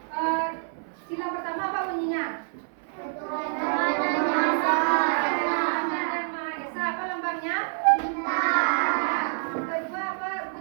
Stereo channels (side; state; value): left; silent; 60 dB below the other